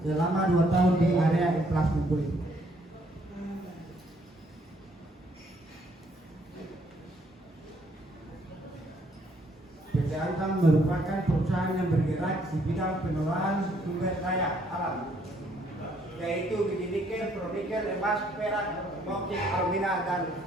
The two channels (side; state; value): both; normal; correlation 0.67